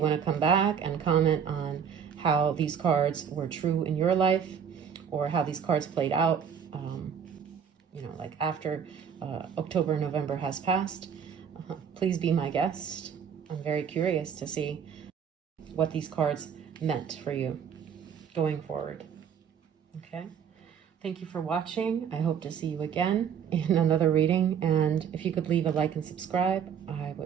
want to come back and comment on how these cards were true in your life, or how these cards played out, you know, like after October, November has passed, please be my guest. I'm very curious to see what these cards meant for you going forward. Okay. Thank you for watching. I hope to see you again in another reading. And if you could leave a like and subscribe, I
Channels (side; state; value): left; quieter; 7.6 dB